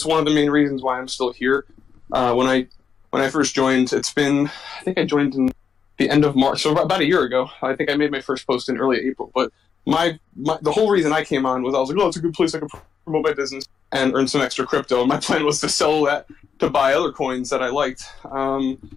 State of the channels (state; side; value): quieter; right; 6.7 dB